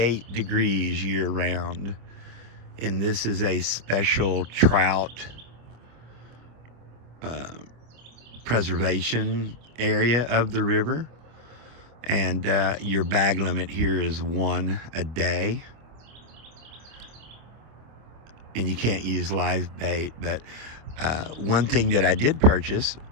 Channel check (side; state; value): left; late; 25 ms